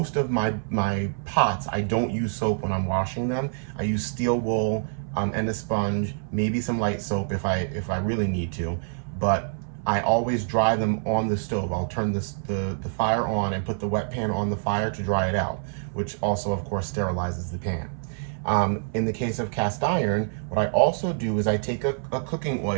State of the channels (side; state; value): left; silent; 60 dB below the other